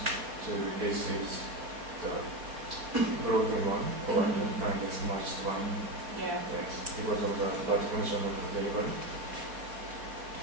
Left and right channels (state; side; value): late; left; 4.1 ms